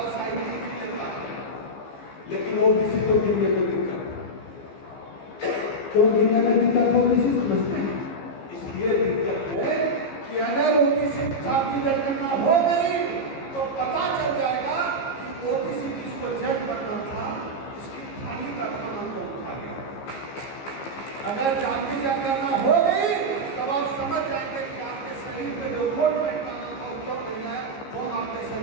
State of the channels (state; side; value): late; right; 15 ms